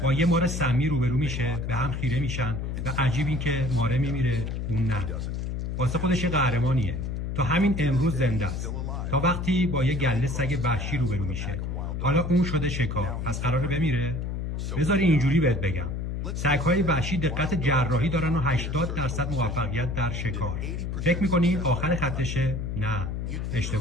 با یه مار سمی روبرو میشه، به هم خیره میشن و عجیب این که ماره میمیره اون نه. واسه خودش یه قهرمانیه. تا همین امروز زنده است. تا وقتی با یه گله سگ وحشی روبرو میشه. حالا اون شده شکار، پس قراره بمیره؟ بذاری اینجوری بهت بگم. سگ‌های وحشی دقت جراحی دارن و 80% موفقیت در شکار. فکر می‌کنی آخر خطشه؟ نه،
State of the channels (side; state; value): left; noise; hum, 3 dB below the sound